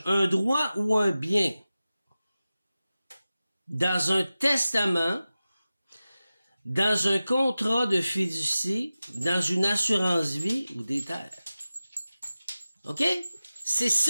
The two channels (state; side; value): inverted; both; correlation -0.95